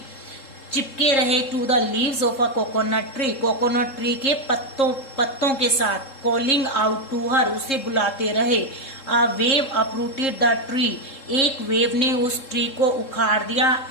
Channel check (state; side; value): late; right; 3.7 ms